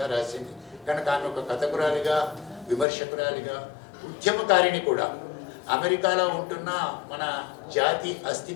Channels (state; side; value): drops out; right; at 2.9 s